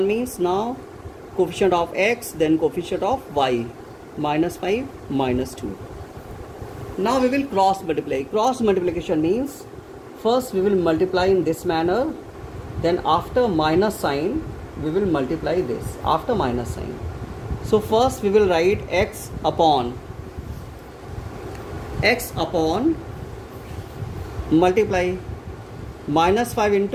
means now coefficient of x, then coefficient of y, minus 5 minus 2. Now we will cross multiply. Cross multiplication means first we will multiply in this manner, then after minus sign we will multiply this after minus sign. So first we will write x upon multiply minus 5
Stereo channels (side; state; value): both; identical; correlation 1.00